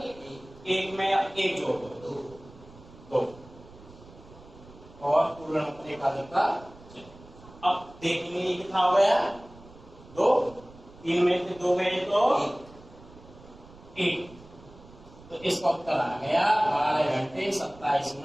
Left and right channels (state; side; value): noise; right; rumble, 21 dB below the sound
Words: 1 में 1 जोड़ दो 2 और पूर्ण अंक पर एकाधिक का चिन्ह। अब देखेंगे ये कितना हो गया? 2। 3 में से 2 गए तो 1। तो इसका उत्तर आ गया 12 घंटे 27